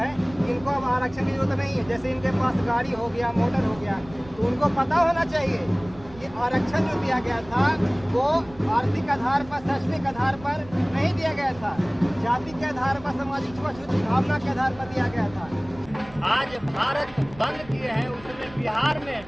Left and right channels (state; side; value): noise; right; rumble, 20 dB below the sound